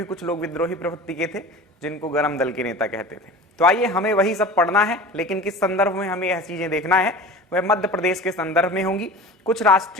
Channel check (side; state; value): both; normal; correlation 0.36